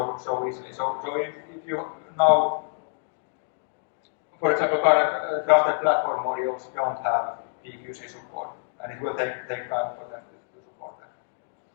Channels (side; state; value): right; silent; digital silence